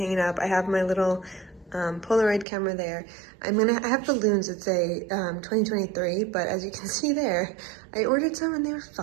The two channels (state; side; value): drops out; left; at 2.5 s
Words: up. I have my little Polaroid camera there. I have balloons that say 2023, but as you can see there, I ordered some and they were